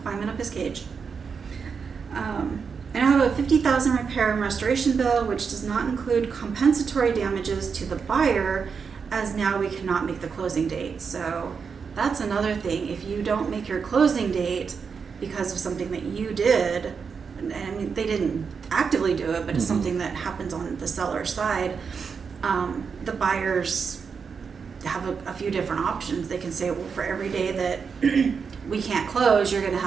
climbing up his cage. I now have a $50,000 repair and restoration bill, which does not include compensatory damages to the buyer, as now we cannot make the closing date. So that's another thing. If you don't make your closing date because of something that you did, and I mean, they didn't actively do it, but it's something that happens on the seller's side, the buyer's have a few different options. They can say, well, for every day that we can't close, you're going to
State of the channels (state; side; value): quieter; left; 5.9 dB